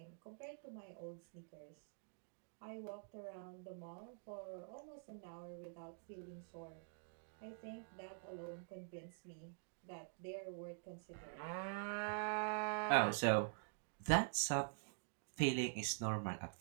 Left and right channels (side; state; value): left; silent; digital silence